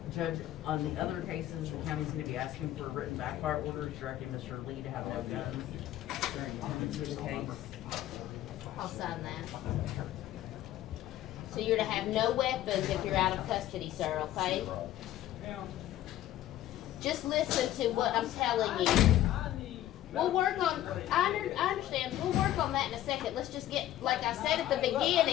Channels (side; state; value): right; quieter; 13.3 dB